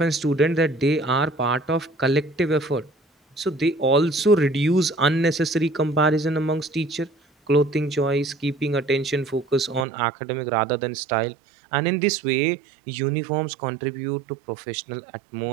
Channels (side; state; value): left; drops out; at 9.9 s